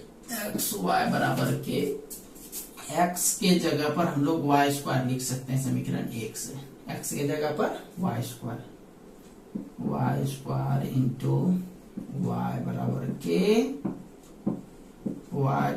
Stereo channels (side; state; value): both; identical; correlation 1.00